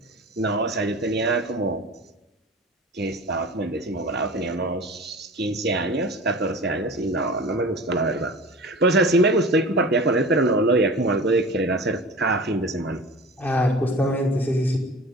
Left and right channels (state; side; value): normal; both; correlation 0.37